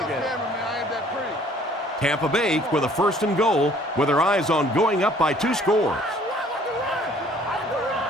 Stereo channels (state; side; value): normal; both; correlation 0.57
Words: Tampa Bay with a first and goal with their eyes on going up by 2 scores.